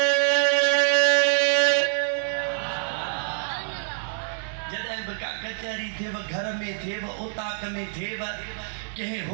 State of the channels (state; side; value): silent; left; 61 dB below the other